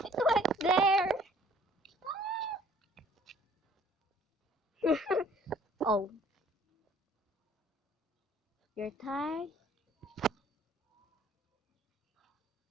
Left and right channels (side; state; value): both; normal; correlation 0.56